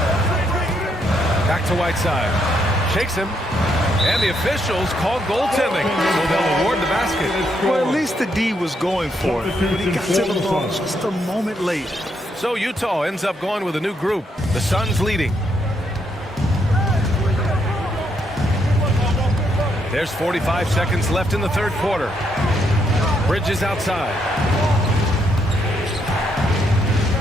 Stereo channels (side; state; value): both; normal; correlation 0.76